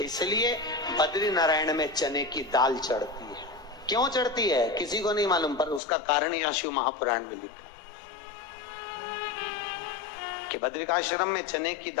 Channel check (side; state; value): right; drops out; at 5.8 s